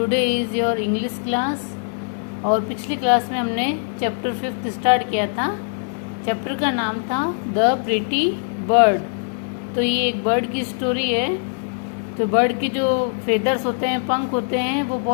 is your English class. और पिछली class में हमने चैप्टर 5 स्टार्ट किया था। चैप्टर का नाम था द प्रिटी बर्ड। तो ये एक बर्ड की स्टोरी है। तो बर्ड की जो फेदर्स होते हैं, पंख होते हैं, वो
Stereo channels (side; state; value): right; silent; 63 dB below the other